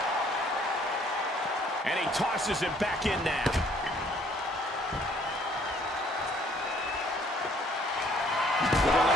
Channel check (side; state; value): both; normal; correlation 0.61